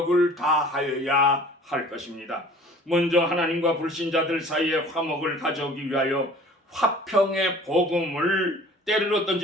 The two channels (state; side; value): normal; both; correlation 0.47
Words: 다하여야 할 것입니다. 먼저 하나님과 불신자들 사이에 화목을 가져오기 위하여 화평의 복음을 때를